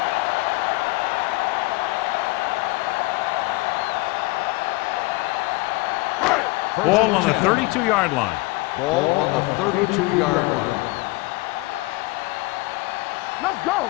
Ball on the 32-yard line. Ball on the 32-yard line. One back. Let's go.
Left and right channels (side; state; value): right; quieter; 23.0 dB